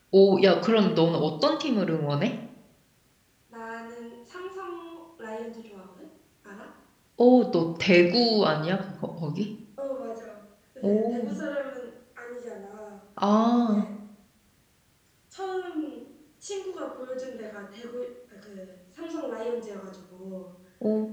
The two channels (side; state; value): both; identical; correlation 1.00